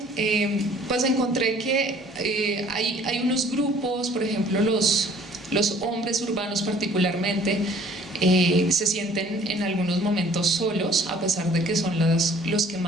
pues encontré que hay unos grupos, por ejemplo los hombres urbanos particularmente, se sienten en algunos momentos solos, a pesar de que son los que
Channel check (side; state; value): both; normal; correlation 0.55